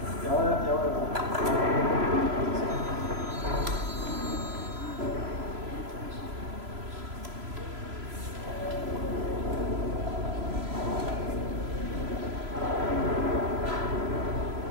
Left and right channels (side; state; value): left; late; 3.0 ms